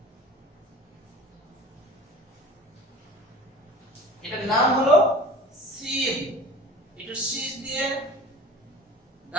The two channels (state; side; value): normal; both; correlation 0.40